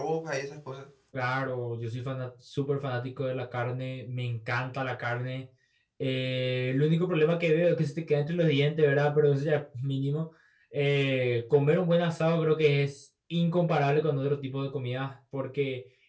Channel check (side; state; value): both; identical; correlation 1.00